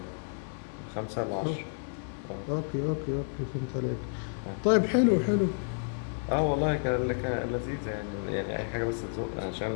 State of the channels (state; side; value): silent; right; 57 dB below the other